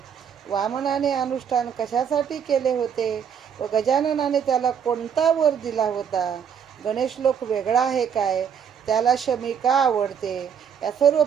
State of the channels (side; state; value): left; quieter; 7.8 dB